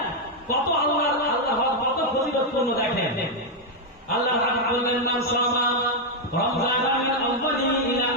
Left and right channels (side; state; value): both; normal; correlation 0.00